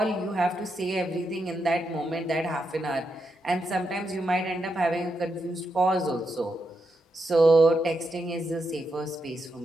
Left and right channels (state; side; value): normal; both; correlation 0.84